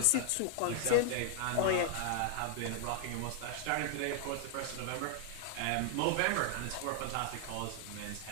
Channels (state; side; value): different; both; correlation 0.00